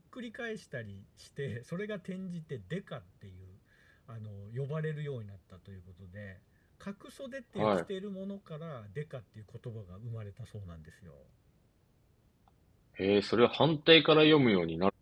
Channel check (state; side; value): identical; both; correlation 1.00